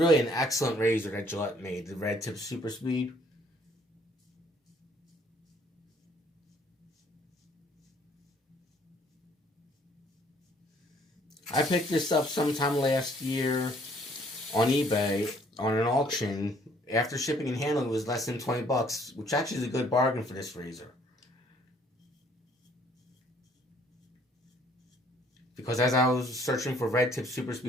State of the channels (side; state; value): both; normal; correlation 0.62